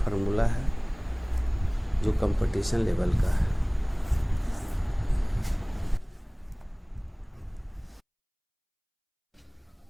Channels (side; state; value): both; identical; correlation 1.00